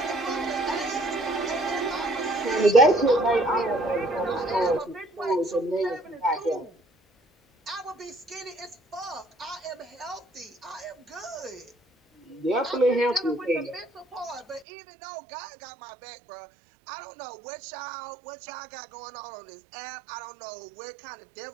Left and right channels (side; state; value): left; drops out; at 14.7 s